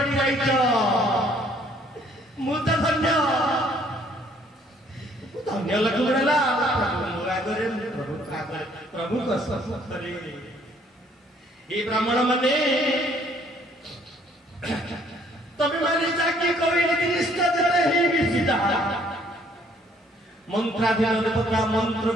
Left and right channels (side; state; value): both; normal; correlation 0.62